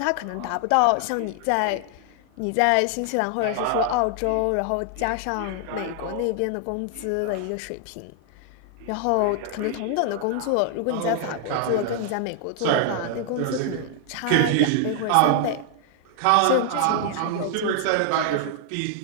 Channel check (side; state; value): both; different; correlation 0.00